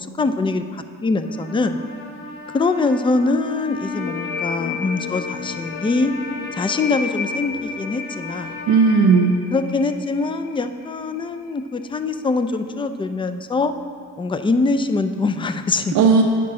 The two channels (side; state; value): both; normal; correlation 0.47